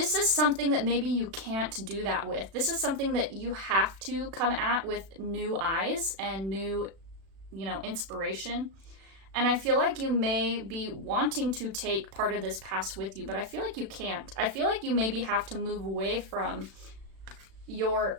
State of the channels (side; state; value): left; late; 36 ms